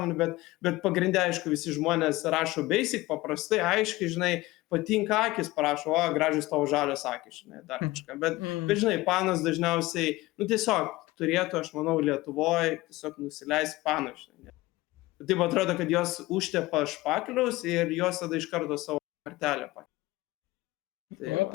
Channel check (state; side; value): quieter; right; 19.4 dB